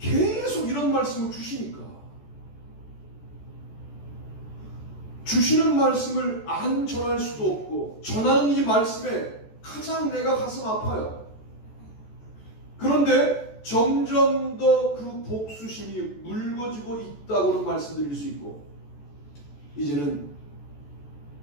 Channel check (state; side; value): late; right; 14 ms